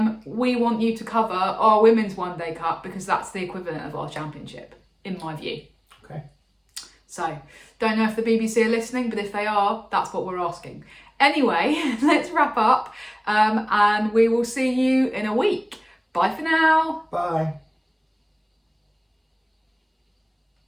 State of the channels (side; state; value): both; identical; correlation 1.00